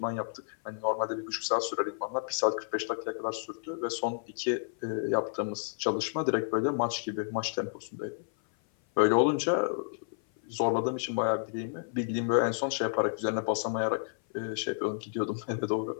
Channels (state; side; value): silent; right; 55 dB below the other